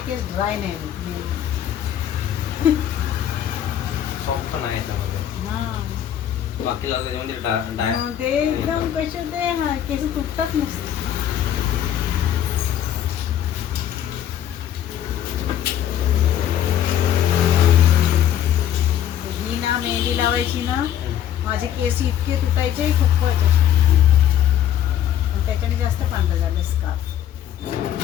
केस ड्राय नाही होत। सॉफ्ट पण आहे त्यामध्ये, हा बाकी लावलं त्याच्यामध्ये ते एकदम कसे ते केस तुटतात नसते। लावायची ना माझे केस इतके तुटायचे खूपच. आणि त्याच्याने जास्त पांढरं झालं स्कार्फ.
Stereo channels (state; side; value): quieter; right; 10.6 dB